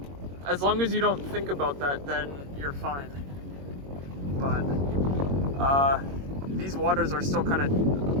As long as you don't think about that, then you're fine. But these waters are still kind of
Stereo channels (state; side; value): late; left; 22 ms